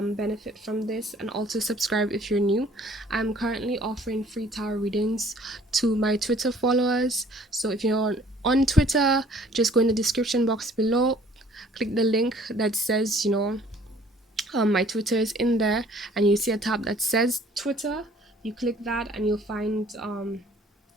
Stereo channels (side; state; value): both; normal; correlation 0.56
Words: benefit from this, and also subscribe if you're new. I'm currently offering free tarot readings to my Twitter followers. So if you're on Twitter, just go in the description box below, click the link that says, my Twitter is in there, and you see a tab that says Twitter. You click that, and you'll find